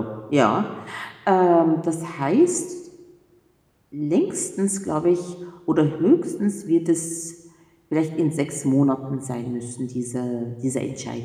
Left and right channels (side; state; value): both; identical; correlation 1.00